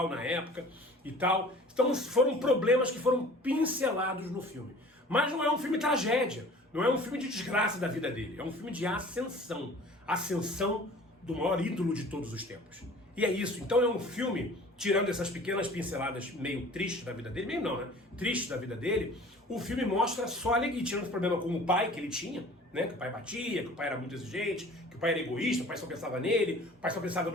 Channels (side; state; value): both; normal; correlation 0.46